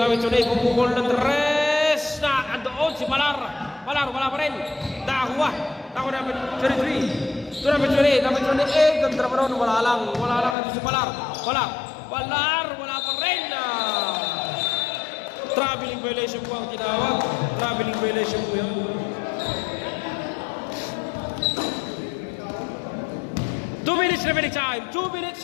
Pumukul ng 3. Na andoon si Palar, wala pa rin. Nakakuha number 33. To number 28. Ganda pa rin. Wala lang ito si Palar. Wala pa rin. Traveling violation po ang tinawag. Traveling violation po yun. 2 minutes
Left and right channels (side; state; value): right; drops out; at 10.6 s